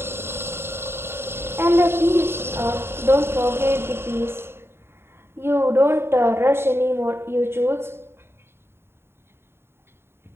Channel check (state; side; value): late; left; 0.12 ms